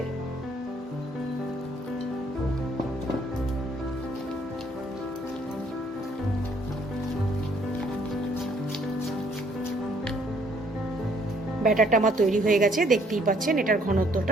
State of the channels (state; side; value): normal; both; correlation 0.65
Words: ব্যাটারটা আমার তৈরি হয়ে গেছে, দেখতেই পাচ্ছেন এটার